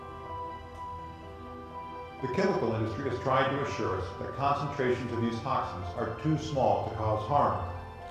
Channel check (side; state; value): both; identical; correlation 1.00